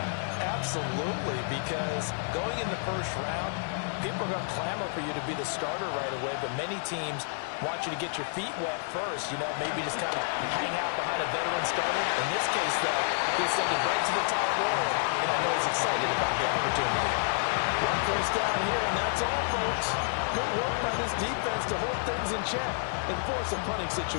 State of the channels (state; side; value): silent; right; 57 dB below the other